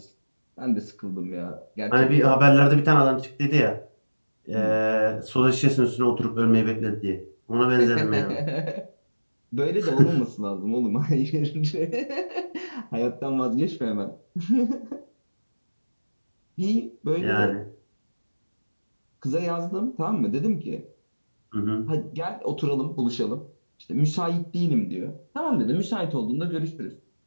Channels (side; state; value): both; inverted; correlation -1.00